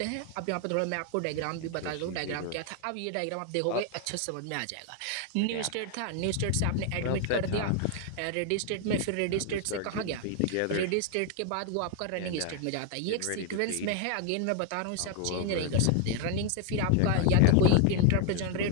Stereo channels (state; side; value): different; both; correlation 0.00